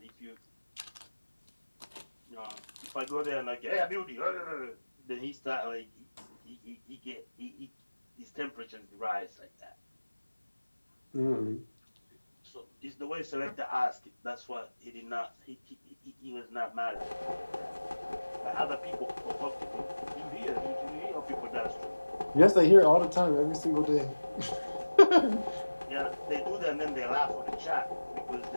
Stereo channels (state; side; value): inverted; both; correlation -1.00